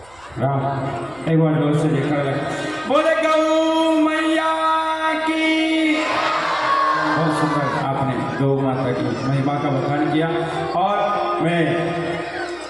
राम एक बार जोर से देखा बोले गौ मैया की। बहुत सुंदर आपने गौ माता की महिमा का बखान किया और मैं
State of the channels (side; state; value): right; noise; hum, 28 dB below the sound